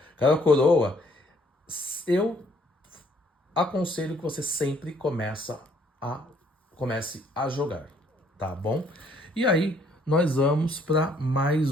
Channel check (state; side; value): normal; both; correlation 0.64